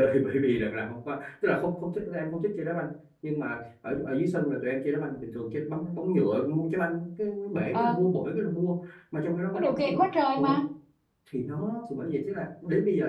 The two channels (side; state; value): both; identical; correlation 1.00